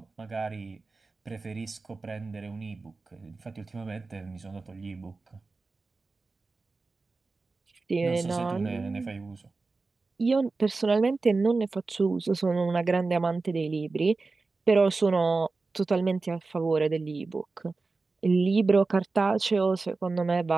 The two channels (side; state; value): left; quieter; 3.9 dB